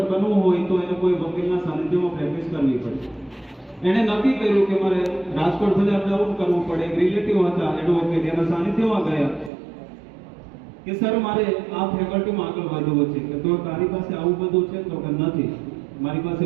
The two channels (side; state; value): left; drops out; at 9.5 s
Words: બનવું હોય તો એને કોઈ વકીલના સાનિધ્યમાં પ્રેક્ટિસ કરવી પડે. એને નક્કી કર્યું કે મારે રાજકોટ સુધી અપડાઉન કરવું પડે. રિલેટિવ હતા એડવોકેટ, એના સાનિધ્યમાં ગયા કે સર મારે આ ફેકલ્ટીમાં આગળ વધવું છે. કે તો તારી પાસે આવું બધું છે? તો કે નથી, મારી પાસે